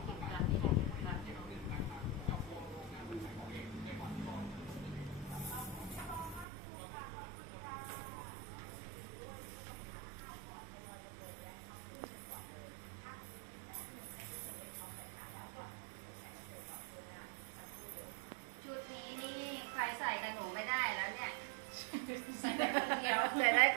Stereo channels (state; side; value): drops out; left; at 6.5 s